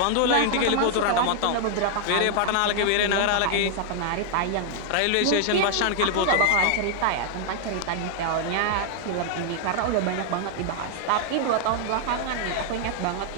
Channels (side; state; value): both; different; correlation -0.01